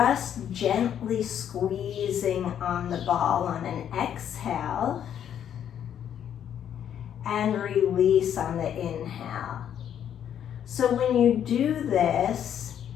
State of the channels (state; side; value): quieter; right; 9.5 dB